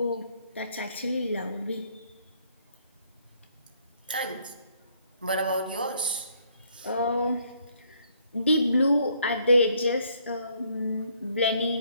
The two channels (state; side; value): inverted; both; correlation -0.67